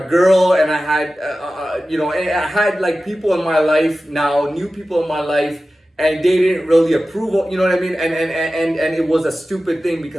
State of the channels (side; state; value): both; normal; correlation 0.95